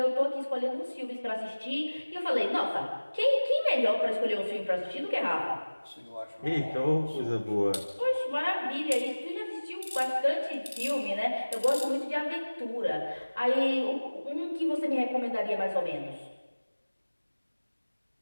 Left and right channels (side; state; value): both; inverted; correlation -1.00